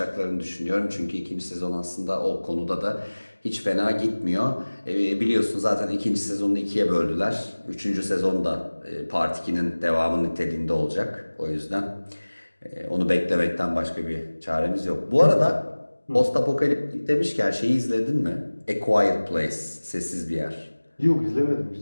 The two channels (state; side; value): inverted; both; correlation -1.00